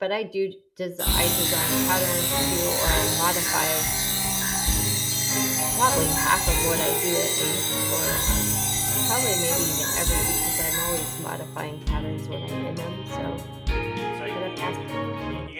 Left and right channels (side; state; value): both; identical; correlation 1.00